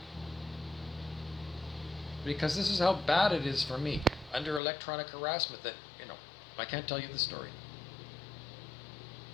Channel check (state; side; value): drops out; right; at 4.6 s